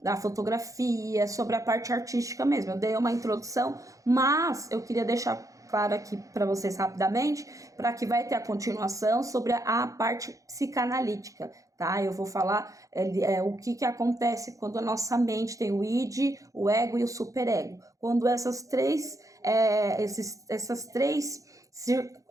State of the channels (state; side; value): late; left; 0.16 ms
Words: da fotografia, sobre a parte artística mesmo. Eu dei uma introdução, mas eu queria deixar claro aqui para vocês rapidamente, para que vai ter a continuação sobre a parte psicanalítica, tá? Eu vou falar o que acontece quando a nossa mente tem o id, o ego e o superego. Quando essas três